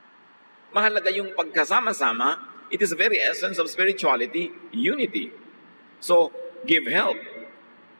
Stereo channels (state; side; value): inverted; both; correlation -1.00